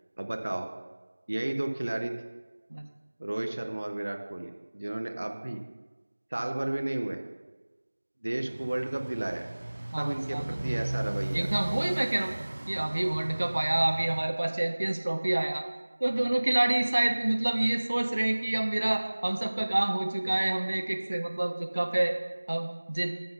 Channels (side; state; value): both; inverted; correlation -1.00